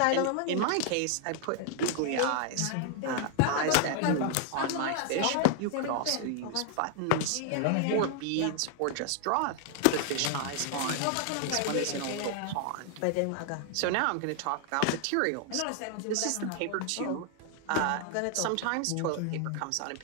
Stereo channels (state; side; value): different; both; correlation 0.00